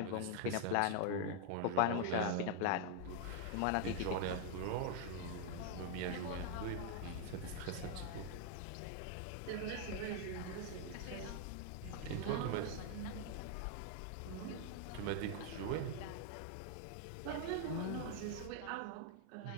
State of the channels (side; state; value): both; different; correlation 0.00